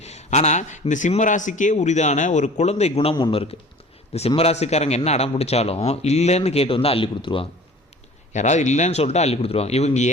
ஆனால் இந்த சிம்ம ராசிக்கே உரிதான ஒரு குழந்தை குணம் ஒன்று இருக்குது. இந்த சிம்மராசிக்காரங்க என்ன அடம் பிடிச்சாலும் இல்லைன்னு கேட்டு அள்ளி கொடுத்துருவாங்க. யாராவது இல்லைன்னு சொல்லிட்டு அள்ளி கொடுத்துருவாங்க. இவங்க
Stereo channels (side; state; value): both; normal; correlation 0.45